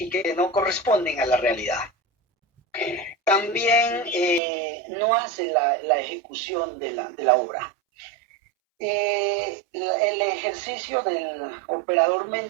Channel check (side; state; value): left; drops out; at 4.4 s